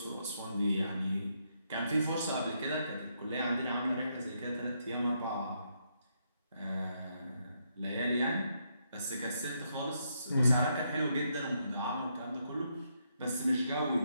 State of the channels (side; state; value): both; inverted; correlation -0.77